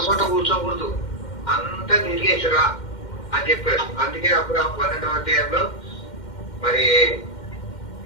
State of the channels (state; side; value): late; right; 2.1 ms